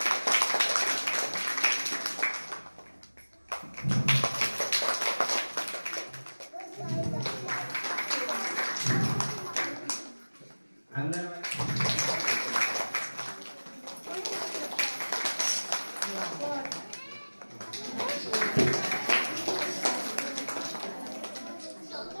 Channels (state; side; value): inverted; both; correlation -1.00